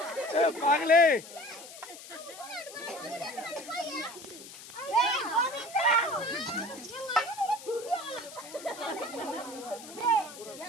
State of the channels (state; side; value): noise; left; hiss, 15 dB below the sound